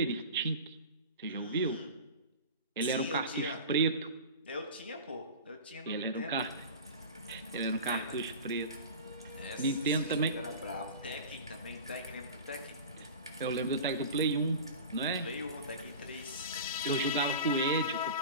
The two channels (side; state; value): both; inverted; correlation -0.33